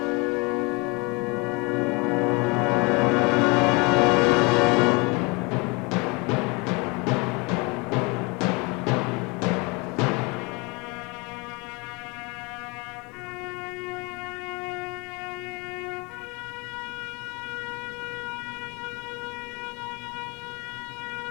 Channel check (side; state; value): right; quieter; 28.5 dB